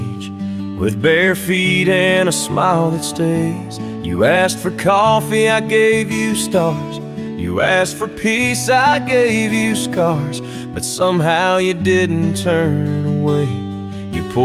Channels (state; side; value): identical; both; correlation 1.00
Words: with bare feet and a smile that stays. You asked for coffee, I gave you stars. You asked for peace, I gave you scars. But somehow you didn't turn away. You